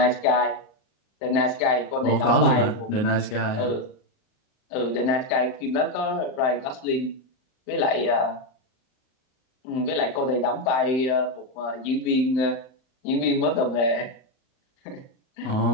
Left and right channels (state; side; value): late; right; 39 ms